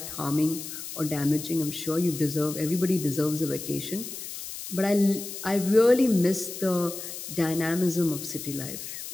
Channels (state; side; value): noise; left; hiss, 9 dB below the sound